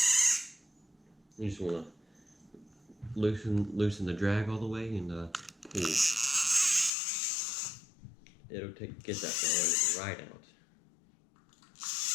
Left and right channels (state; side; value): drops out; right; at 6.9 s